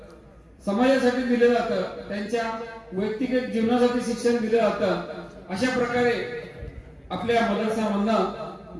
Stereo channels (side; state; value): both; identical; correlation 1.00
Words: समाजासाठी दिले जातं, त्यांच्या वैयक्तिक जीवनासाठी शिक्षण दिले जातं. अशा प्रकारे आपल्या मदरसामधनं